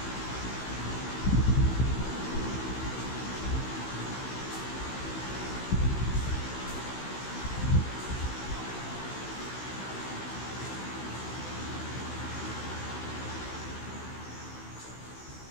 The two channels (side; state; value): right; late; 16 ms